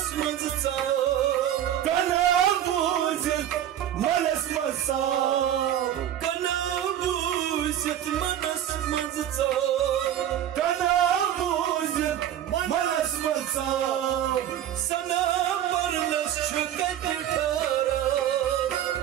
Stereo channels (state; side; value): quieter; left; 11.0 dB